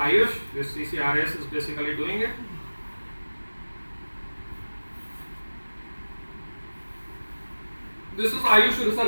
This CCRS is basically doing it. This is Ayush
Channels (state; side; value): inverted; both; correlation -1.00